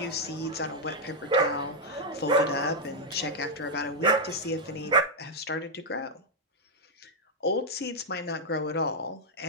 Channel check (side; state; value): both; normal; correlation -0.03